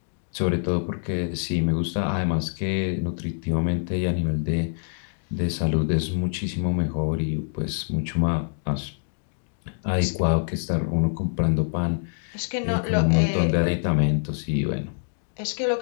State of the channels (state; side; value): silent; right; digital silence